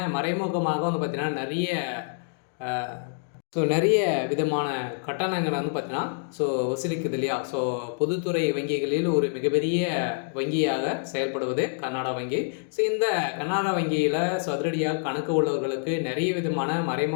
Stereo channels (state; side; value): silent; right; digital silence